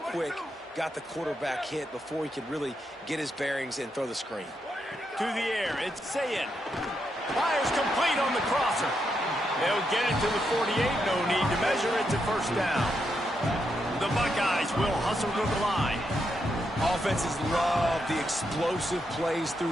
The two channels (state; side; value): normal; both; correlation 0.82